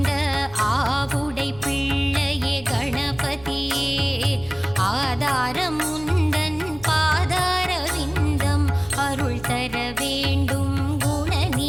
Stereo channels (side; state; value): right; noise; rumble, 20 dB below the sound